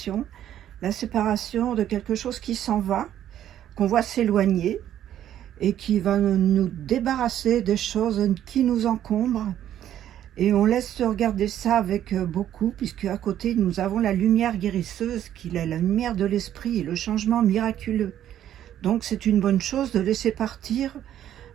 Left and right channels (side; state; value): left; quieter; 11.2 dB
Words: de quelque chose qui s'en va, qu'on voit s'éloigner et qui va nous débarrasser des choses qui nous encombrent. Et on laisse regarder ça avec beaucoup, puisque à côté, nous avons la lumière guérisseuse, qui est la lumière de l'esprit et le changement miraculeux. Donc c'est une bonne chose de laisser partir